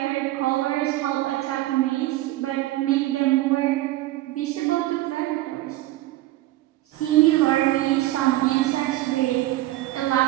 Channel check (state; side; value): quieter; left; 16.6 dB